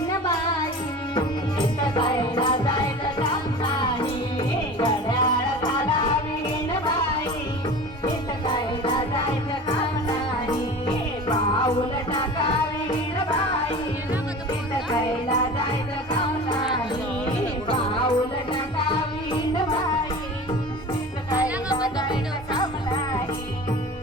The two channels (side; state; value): both; normal; correlation 0.36